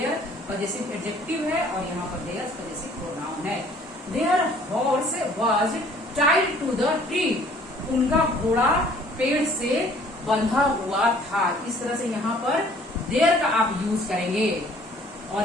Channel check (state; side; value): normal; both; correlation 0.56